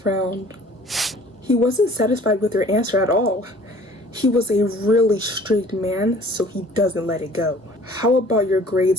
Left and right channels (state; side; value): normal; both; correlation 0.52